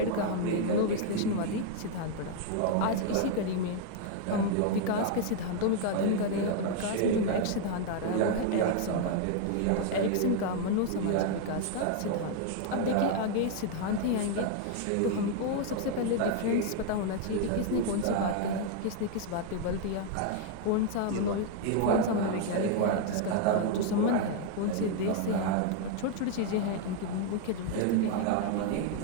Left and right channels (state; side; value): different; both; correlation 0.00